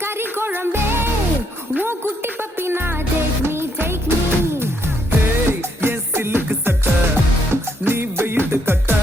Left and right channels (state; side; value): normal; both; correlation 0.74